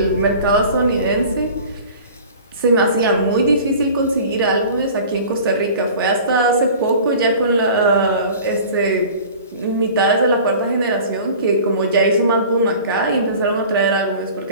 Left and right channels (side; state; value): both; inverted; correlation -0.42